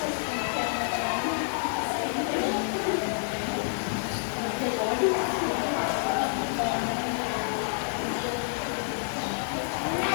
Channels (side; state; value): right; silent; digital silence